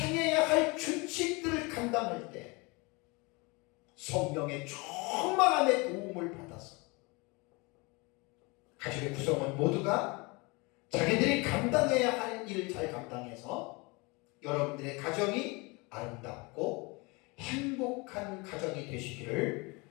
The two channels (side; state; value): right; quieter; 27.2 dB